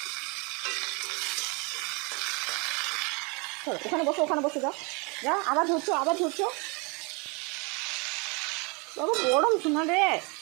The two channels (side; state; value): left; quieter; 30.7 dB